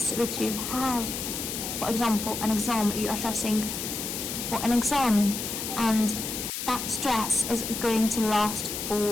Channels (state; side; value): noise; left; hiss, 5 dB below the sound